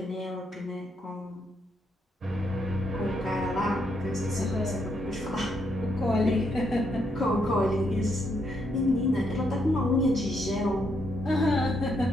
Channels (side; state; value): both; normal; correlation 0.77